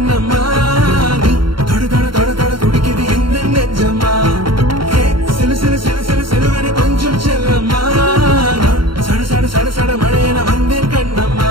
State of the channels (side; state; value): left; late; 0.73 ms